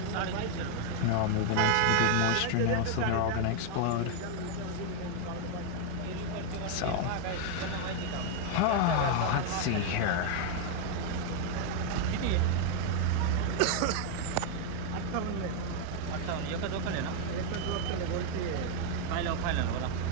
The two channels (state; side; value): different; both; correlation 0.00